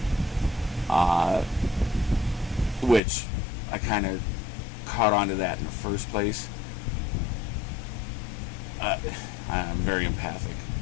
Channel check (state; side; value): drops out; right; at 3.0 s